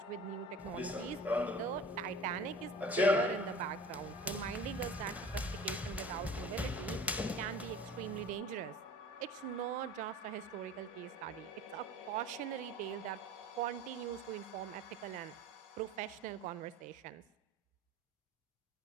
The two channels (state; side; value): normal; both; correlation 0.41